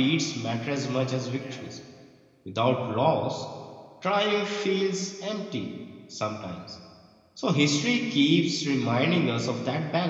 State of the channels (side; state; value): both; identical; correlation 1.00